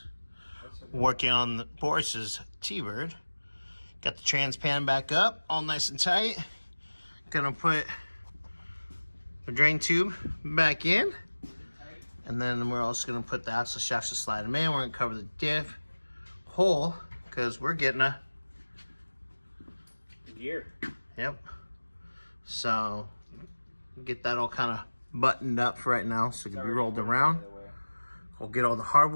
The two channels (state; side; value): inverted; both; correlation -1.00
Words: Working on Boris's T-Bird. Got the trans pan back up, all nice and tight. Gonna put the drain tube back in. And then we're also gonna put the axle shafts to slide them in. We're gonna cover the diff hole because we're getting a gear. Yep. So get that all kind of buttoned up for right now so it can be rolled around. We'll get all the